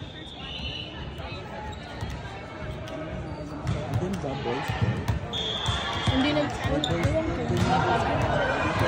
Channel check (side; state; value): both; identical; correlation 1.00